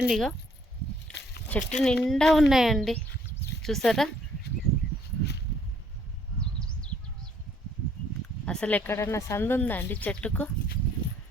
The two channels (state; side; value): normal; both; correlation 0.63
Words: ఇక చెట్టు నిండా ఉన్నాయండి. చూసారా అసలు ఎక్కడన్నా సందు ఉందా అండి చెట్టుకు?